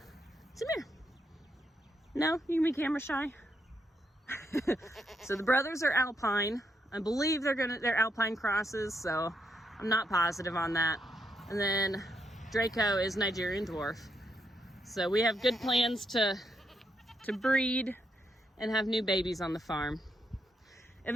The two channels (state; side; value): normal; both; correlation 0.79